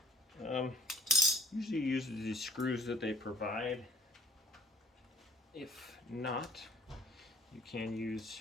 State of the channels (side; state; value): both; normal; correlation 0.56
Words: Usually use the screws that they provide. If not, you can use